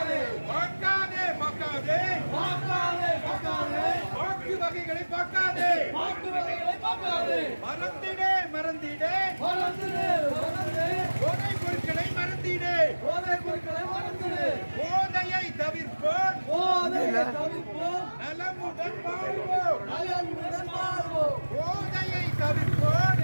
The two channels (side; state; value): both; inverted; correlation -1.00